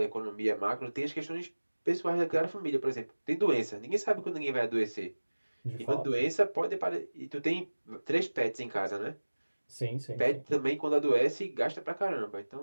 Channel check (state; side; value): inverted; both; correlation -1.00